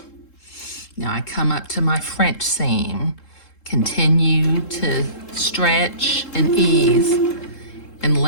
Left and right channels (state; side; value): late; right; 3.7 ms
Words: Now I come up to my French seam, continue to stretch and ease, and